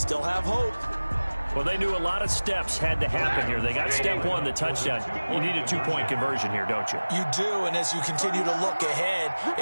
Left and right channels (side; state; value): both; inverted; correlation -1.00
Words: have hope. Well, they knew a lot of steps had to happen here. They got step 1, the touchdown. You need a 2-point conversion here, don't you? You do, and as you continue to look ahead,